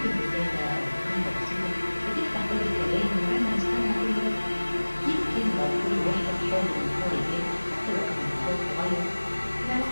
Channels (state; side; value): inverted; both; correlation -1.00